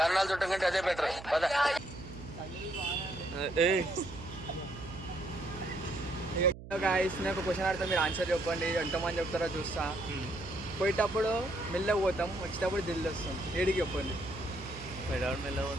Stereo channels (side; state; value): right; noise; hum, 14 dB below the sound